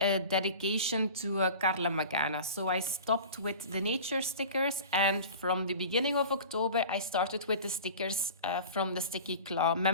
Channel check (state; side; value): inverted; both; correlation -0.38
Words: dedication to Carla Magana. So I stopped with the nature stickers, and from the beginning of October I started with the stickers from the Sticky Claw